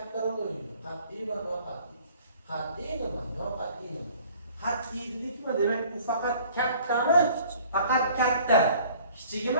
rol o'ynaydi. Qat'iy va noqat'iy. Qat'iy nima? Noqat'iy nima? Qat'iy dedikmi? Demak, u faqat kattami? Faqat katta.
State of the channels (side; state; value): both; inverted; correlation -0.52